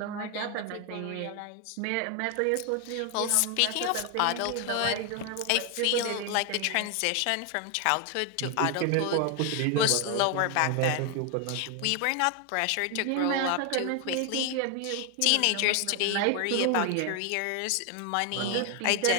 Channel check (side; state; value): both; different; correlation 0.01